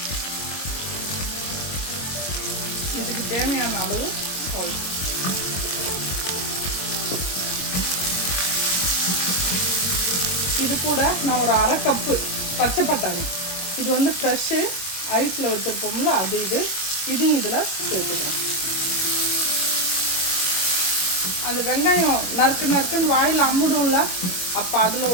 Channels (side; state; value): right; late; 22 ms